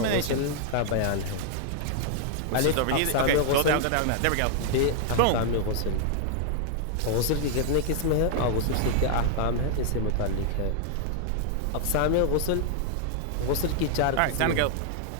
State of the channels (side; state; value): both; different; correlation 0.00